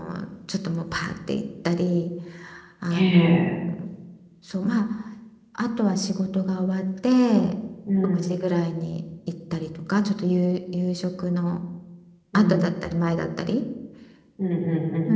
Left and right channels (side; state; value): both; identical; correlation 1.00